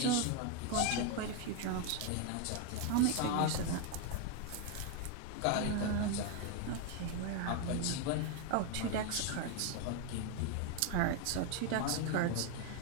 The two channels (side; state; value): both; different; correlation 0.01